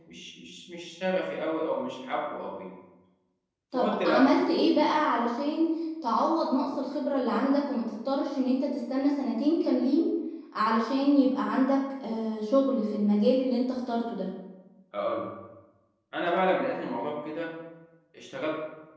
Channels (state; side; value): identical; both; correlation 1.00